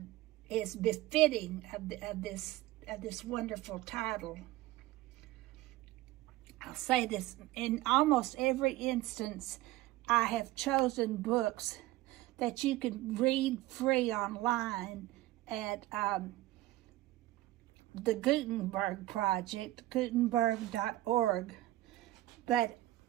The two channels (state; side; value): quieter; left; 17.0 dB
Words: is befitting of this wonderful title. I'll say this, in almost every instance, I have chosen books that you can read free online at the Gutenberg Project, gutenberg.org. But